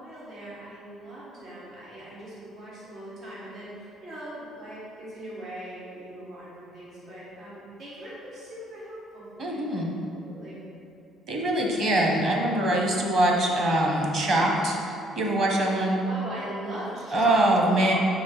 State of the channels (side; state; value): both; normal; correlation 0.65